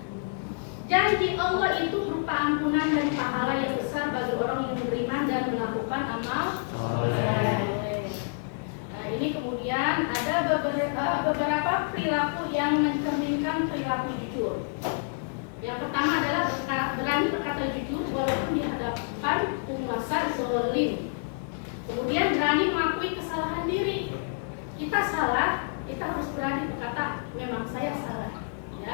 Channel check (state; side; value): silent; right; digital silence